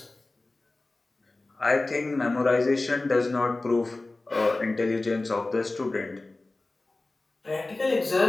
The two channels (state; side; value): quieter; right; 3.1 dB